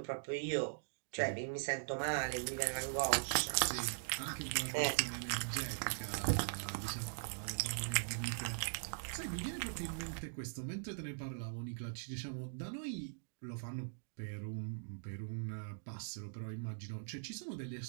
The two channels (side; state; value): left; silent; digital silence